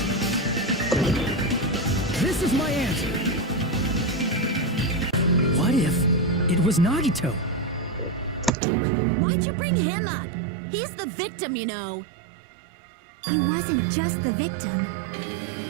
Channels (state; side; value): drops out; left; at 8.5 s